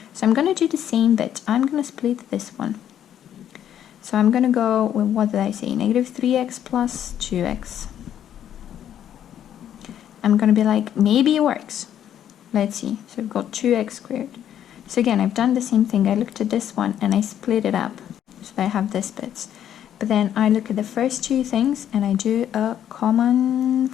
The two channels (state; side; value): quieter; right; 10.3 dB